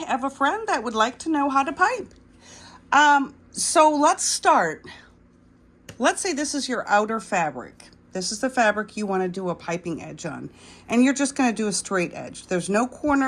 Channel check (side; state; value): both; identical; correlation 1.00